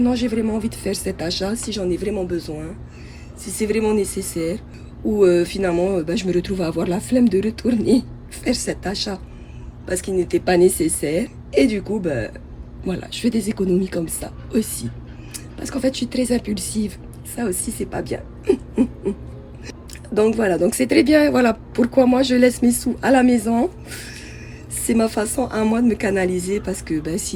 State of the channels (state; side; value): identical; both; correlation 1.00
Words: non j'ai vraiment envie de faire cet achat, si j'en ai vraiment besoin, si c'est vraiment nécessaire ou finalement ben, je me retrouve à avoir la flemme de retourner faire cet achat parce qu'il n'était pas nécessaire. Et du coup, ben, voilà, je fais des économies comme ça aussi. Parce qu'en fait, je suis très impulsive. Ça aussi, c'est pas bien. Donc voilà, donc c'est très bien. Voilà pourquoi moi, je laisse mes sous à la maison. C'est ma façon à moi de me canaliser parce que ben,